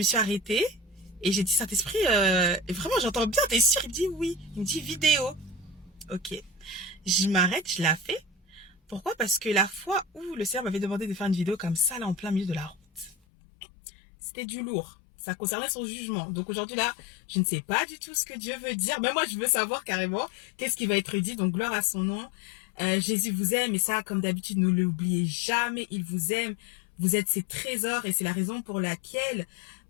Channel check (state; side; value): drops out; right; at 13.2 s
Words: suis arrêtée et j'ai dit, Saint-Esprit, vraiment, j'entends bien, t'es sûr? Il me dit oui. Il me dit vidéo. Ok. Je m'arrête, je la fais. Pourquoi? Parce que la fois où le Seigneur m'avait demandé de faire une vidéo comme ça, là, en plein milieu de la route, c'était du lourd. Ça concernait son jugement. Donc aujourd'hui, là, je ne sais pas du tout ce que Dieu veut dire. Mais moi, je veux savoir carrément qu'est-ce qui va être dit. Donc gloire à son nom. Jésus vous aime et ça, comme d'habitude, ne l'oubliez jamais. Il vous aime. Vous êtes ses trésors et c'est la raison pour laquelle